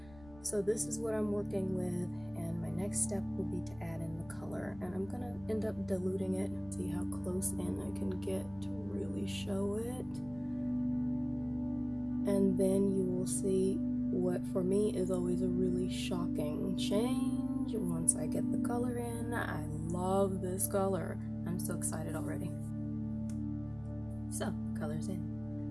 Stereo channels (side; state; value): left; noise; rumble, 20 dB below the sound